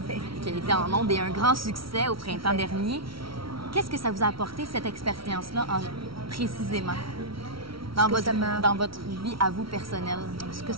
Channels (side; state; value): left; late; 0.75 ms